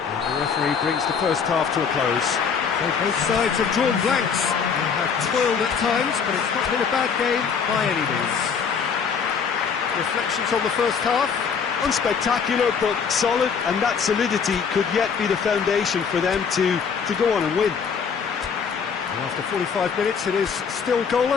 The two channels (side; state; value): right; quieter; 6.3 dB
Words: referee brings the first half to a close. So both sides have drawn blanks. They have toiled at times, but it's not been a bad game by any means. Reflections on the first half? Unspectacular, but solid, and that solidity could yet be the foundation for them to go on and win. And after 45 minutes, it is still